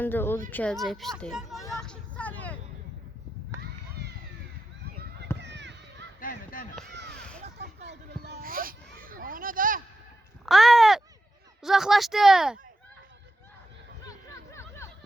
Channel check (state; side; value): normal; both; correlation 0.89